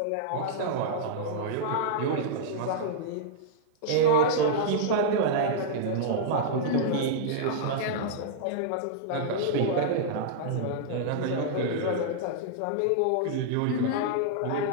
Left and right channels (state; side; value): different; both; correlation -0.02